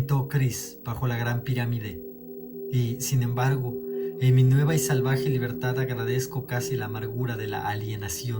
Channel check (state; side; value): identical; both; correlation 1.00